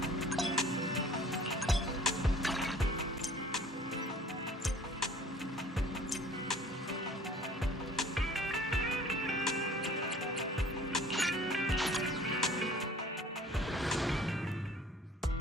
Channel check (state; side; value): normal; both; correlation 0.50